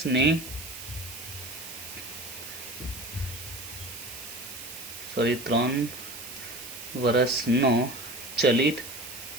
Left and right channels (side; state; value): right; noise; hiss, 11 dB below the sound